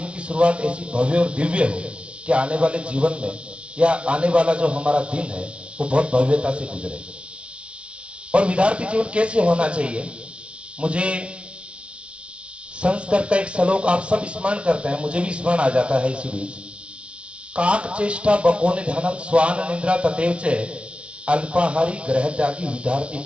की शुरुआत ऐसी भव्य और दिव्य हो कि आने वाले जीवन में या आने वाला जो हमारा दिन है वो बहुत भव्यता से गुजरे। और विद्यार्थी जीवन कैसे होना चाहिए, मुझे संस्कृत का एक श्लोक आप सब स्मरण करते हैं, मुझे भी स्मरण आ जाता है इसी बीच। काक चेष्टा बकोनि ध्यानम स्वान निद्रा तथैव च अल्पाहारी ग्रह त्यागी विद्यार्थी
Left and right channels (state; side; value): late; left; 0.060 ms